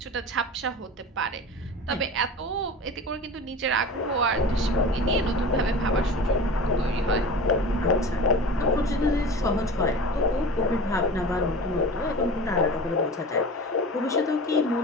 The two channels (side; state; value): both; normal; correlation 0.35